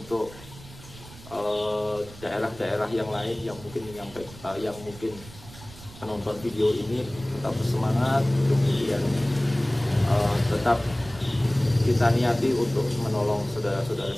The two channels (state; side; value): noise; right; rumble, 18 dB below the sound